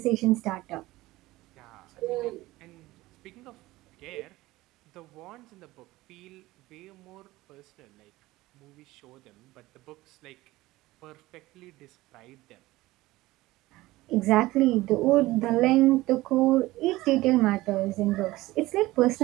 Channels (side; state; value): left; quieter; 18.4 dB